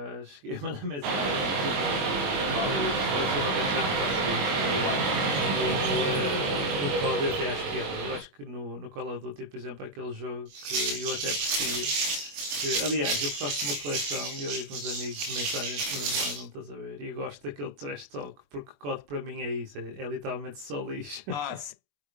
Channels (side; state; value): left; late; 21 ms